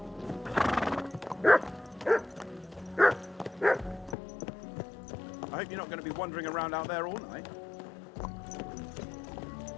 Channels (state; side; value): drops out; right; at 4.2 s